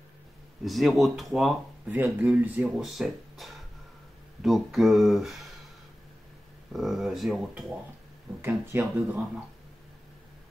0,3,07, donc 0,3, donc un tiers de gramme.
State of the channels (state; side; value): normal; both; correlation 0.95